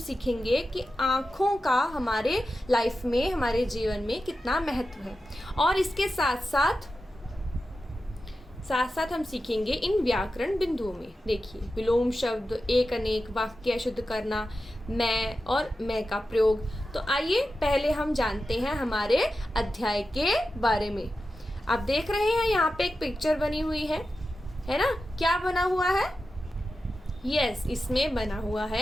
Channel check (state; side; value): normal; both; correlation 0.92